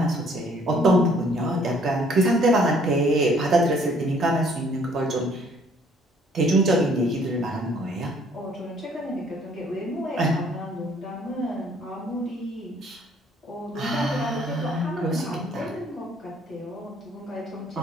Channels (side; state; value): both; normal; correlation 0.61